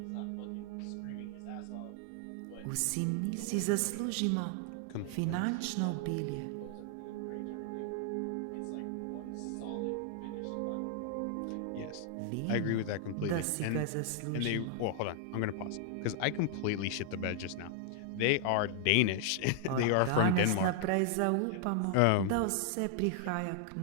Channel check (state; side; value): different; both; correlation -0.01